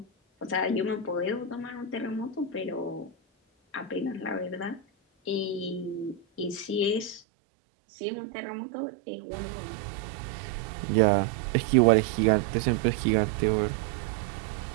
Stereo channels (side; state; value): left; drops out; at 7.2 s